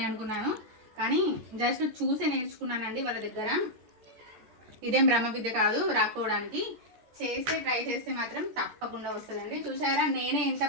అనుకున్నాను. కానీ జస్ట్ చూసే నేర్చుకున్నానండి వాళ్ళ దగ్గర. ఇదేం బ్రహ్మ విద్య కాదు రాకపోవడానికి. ట్రై చేస్తే మాత్రం తప్పకుండా వస్తుందండి. చూసారా నేనే ఎంత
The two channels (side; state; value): left; late; 14 ms